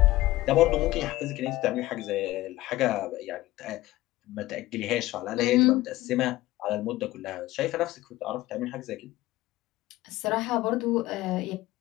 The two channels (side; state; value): right; quieter; 17.1 dB